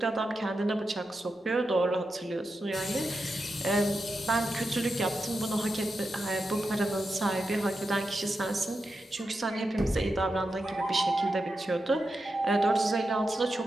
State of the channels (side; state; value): both; normal; correlation 0.89